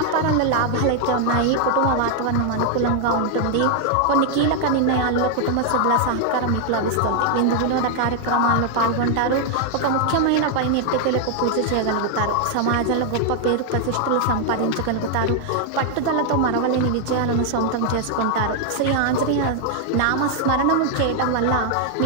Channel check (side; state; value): both; different; correlation 0.00